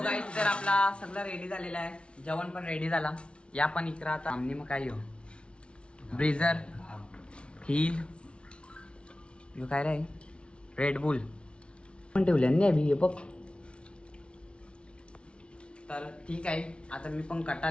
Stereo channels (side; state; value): right; late; 0.058 ms